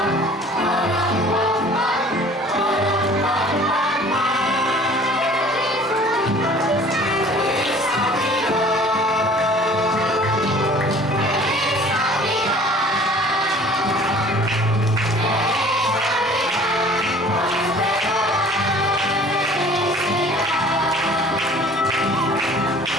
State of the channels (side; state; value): both; normal; correlation 0.49